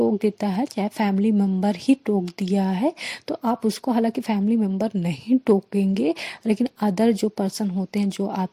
देता है, चाहे फैमिली मेम्बर ही टोक दिया है, तो आप उसको, हालांकि फैमिली मेम्बर नहीं टोकेंगे, लेकिन अदर जो पर्सन होते हैं जो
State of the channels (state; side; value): identical; both; correlation 1.00